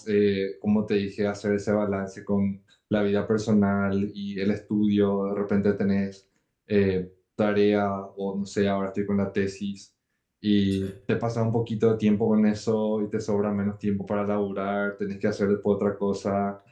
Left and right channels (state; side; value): identical; both; correlation 1.00